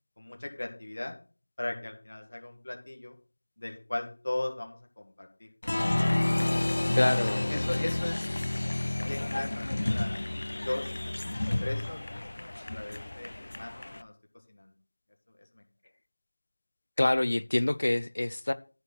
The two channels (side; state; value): both; inverted; correlation -1.00